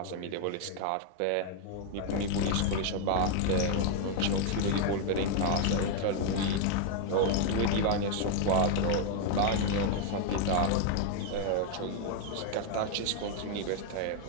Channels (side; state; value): both; different; correlation 0.01